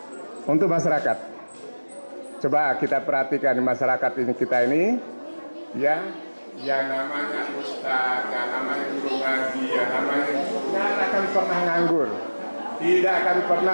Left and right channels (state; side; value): inverted; both; correlation -1.00